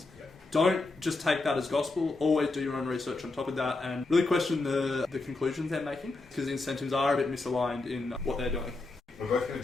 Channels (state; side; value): quieter; right; 3.3 dB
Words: don't just take that as gospel. Always do your own research on top of that and really question the conclusions they're making, because incentives are a bit misaligned in what they're doing. We're both going to